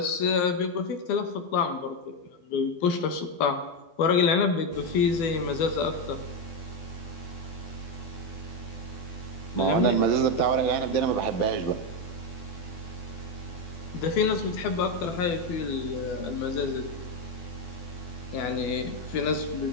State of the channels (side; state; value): right; late; 12 ms